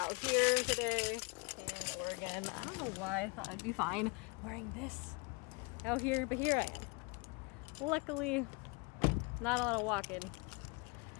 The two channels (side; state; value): right; quieter; 29.7 dB